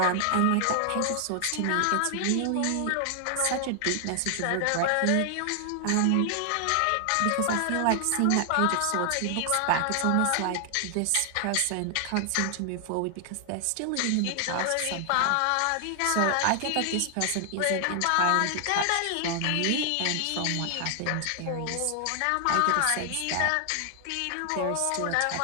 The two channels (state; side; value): different; both; correlation 0.00